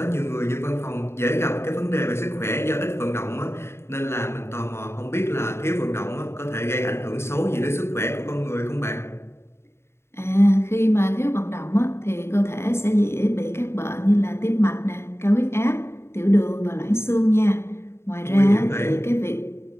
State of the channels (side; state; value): right; late; 0.12 ms